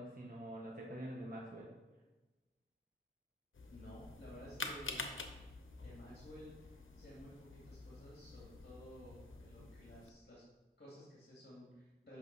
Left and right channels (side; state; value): both; normal; correlation 0.43